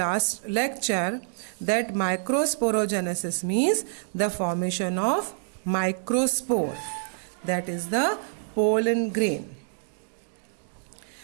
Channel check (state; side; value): silent; left; digital silence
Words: lecture that microsporogenesis means the formation of microspore, that is the pollen grain.